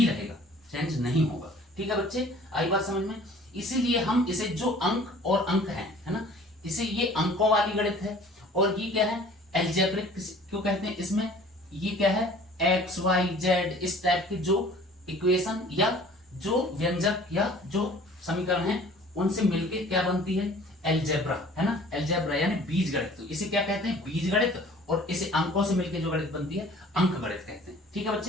रहेगा, चेंज नहीं होगा, ठीक है बच्चे। आई बात समझ में। इसीलिए हम इसे जो अंक और अंक है ना, इसे ये अंकों वाली गणित है, और ये क्या है, एल्जेब्रिक क्यों कहते हैं, इसमें ये क्या है, x y z इस टाइप के जो इक्वेशन या जो व्यंजक या जो समीकरण है उनसे मिलके क्या बनती है, एलजेब्रा, है ना, एलजेब्रा यानी बीज गणित। तो इसे क्या कहते हैं, बीज गणित, और इसे अंकों से मिलकर जो गणित बनती है अंक गणित कहते हैं। ठीक है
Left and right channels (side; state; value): both; normal; correlation 0.49